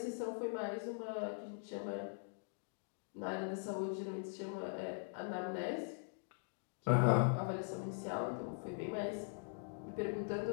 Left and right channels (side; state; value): right; silent; digital silence